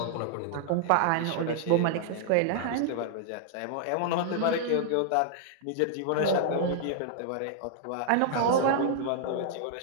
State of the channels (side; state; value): both; different; correlation -0.01